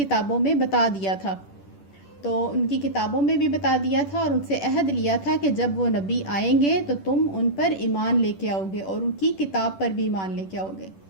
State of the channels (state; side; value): late; right; 10 ms